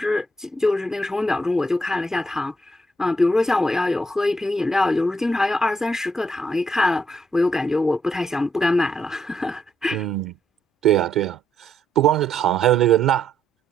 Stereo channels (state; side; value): normal; both; correlation 0.75